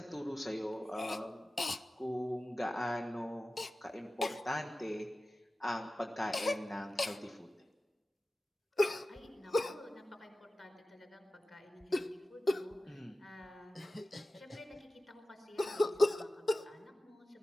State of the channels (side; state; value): both; normal; correlation 0.95